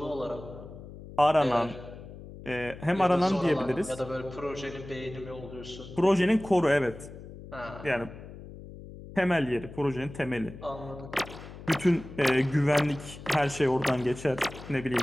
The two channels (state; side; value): noise; left; hum, 15 dB below the sound